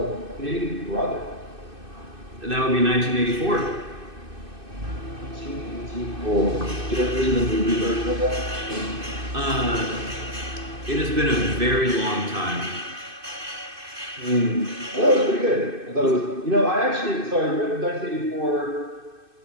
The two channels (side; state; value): left; late; 2.6 ms